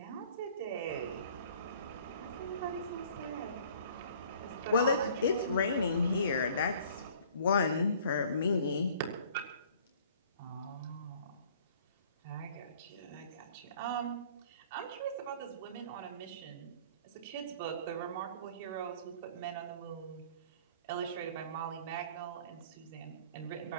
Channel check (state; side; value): inverted; both; correlation -0.54